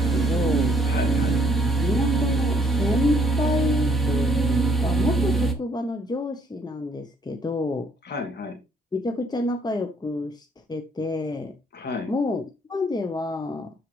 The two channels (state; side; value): normal; both; correlation 0.65